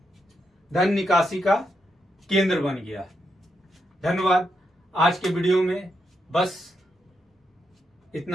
धन निकासी का केंद्र बन गया। धन्यवाद। आज के वीडियो में बस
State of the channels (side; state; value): both; normal; correlation 0.82